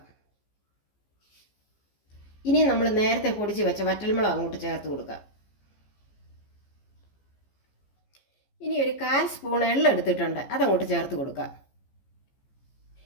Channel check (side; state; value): right; late; 15 ms